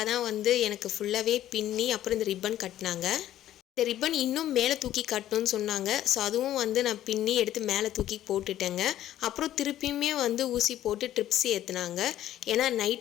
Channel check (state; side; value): quieter; right; 12.7 dB